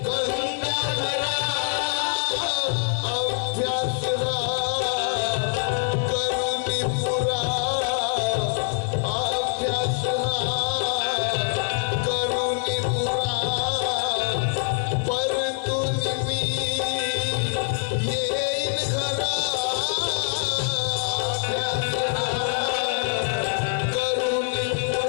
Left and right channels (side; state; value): right; silent; digital silence